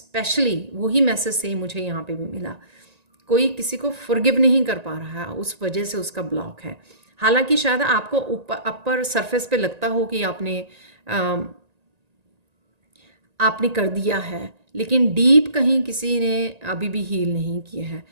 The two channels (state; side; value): late; left; 1.9 ms